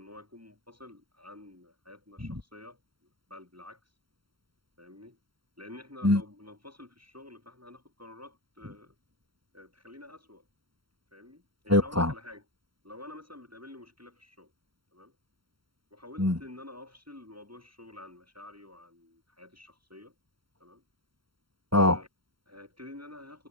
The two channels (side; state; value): left; late; 0.73 ms